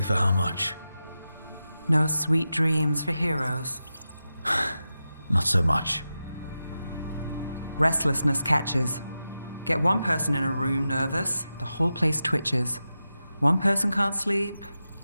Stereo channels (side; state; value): both; inverted; correlation -0.92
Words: for how much. No sweet dreams for heroes. Not so much. Restlessness catches. Get one person in a room nervous, the whole place twitches. One person can't sleep.